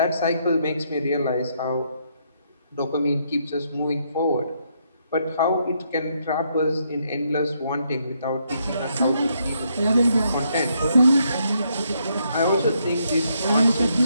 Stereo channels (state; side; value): inverted; both; correlation -0.75